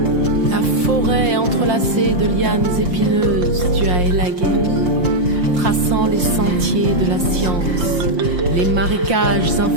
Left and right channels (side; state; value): left; late; 5.6 ms